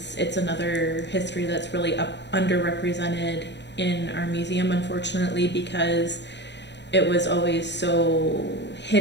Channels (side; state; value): right; late; 0.51 ms